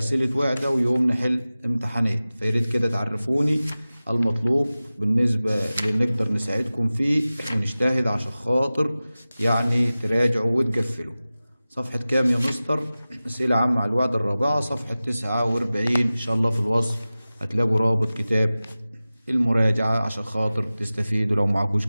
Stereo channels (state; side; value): inverted; both; correlation -0.97